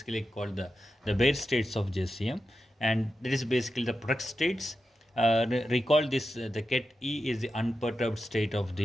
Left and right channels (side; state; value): both; normal; correlation 0.90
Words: called the bare states of JCM, and that is basically the product states. Recall this: the ket E is the unperturbed state of